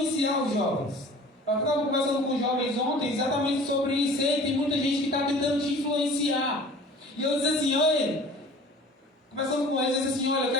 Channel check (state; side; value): normal; both; correlation 0.45